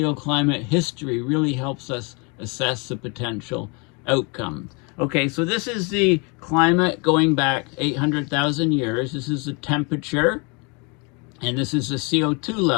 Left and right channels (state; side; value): quieter; right; 31.9 dB